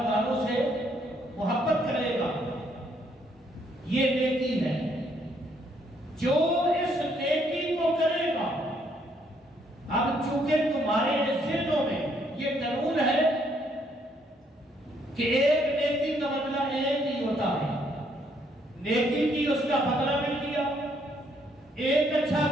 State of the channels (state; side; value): normal; both; correlation 0.69